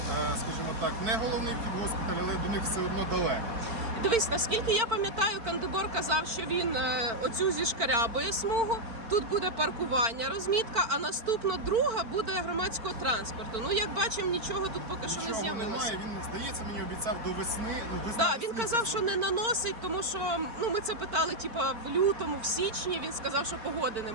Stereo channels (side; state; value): left; late; 4.4 ms